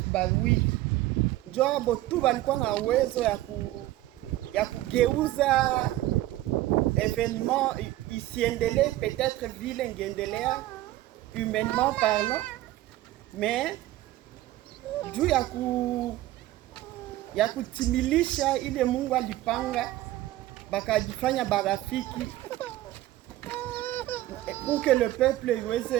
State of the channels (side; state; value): left; quieter; 15.6 dB